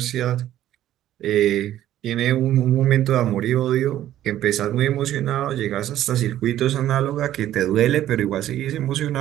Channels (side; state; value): left; quieter; 12.6 dB